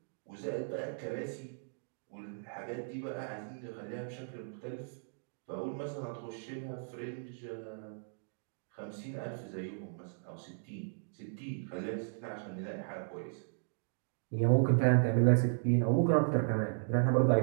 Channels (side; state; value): left; silent; digital silence